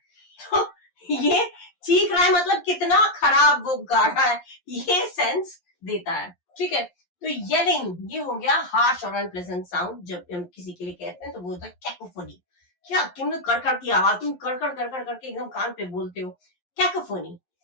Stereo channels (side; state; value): right; late; 11 ms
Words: तो ये चीख रहा है मतलब कितना खराब वो गा रहा है, ये सेंस देता है, ठीक है। तो येलिंग, ये हो गया हार्श और अनप्लेजेंट साउंड, जब हम किसी के लिए कहते हैं तो वो होता है कैकोफोनी। क्या तुमने कड़कड़ की आवाज, तुम कड़कड़ कड़कड़ करके एकदम कान पे बोलते हो, कैकोफोनी,